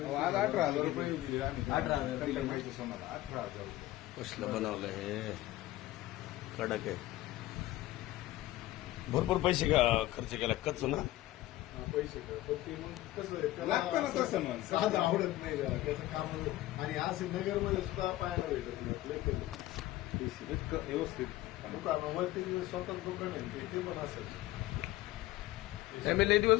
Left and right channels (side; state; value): right; quieter; 16.2 dB